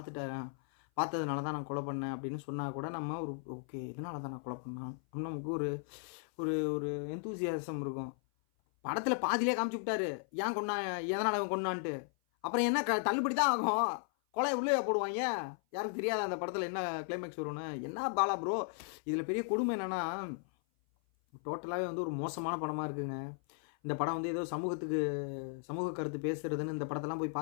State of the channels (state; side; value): silent; right; 54 dB below the other